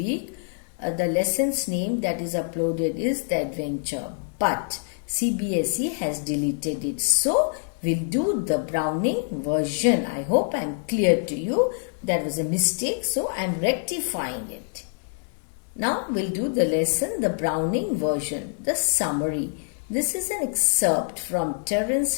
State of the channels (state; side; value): silent; right; 61 dB below the other